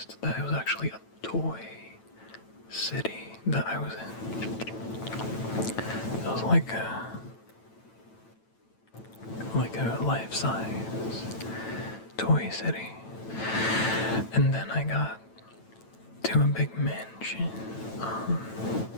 that it was actually a toy city that I was in. It was like a life-size toy city. And then I got to a big mansion,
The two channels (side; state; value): right; late; 9.0 ms